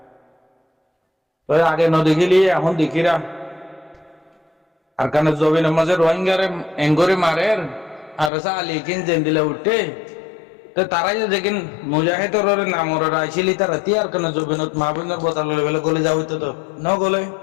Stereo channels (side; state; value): right; drops out; at 8.3 s